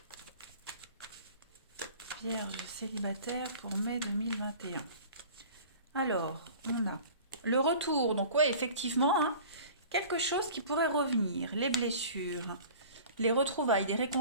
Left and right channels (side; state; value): both; inverted; correlation -0.43